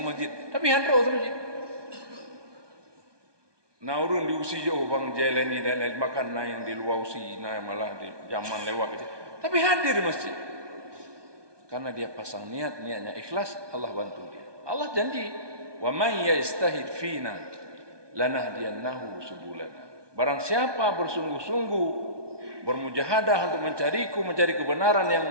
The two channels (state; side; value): late; left; 1.2 ms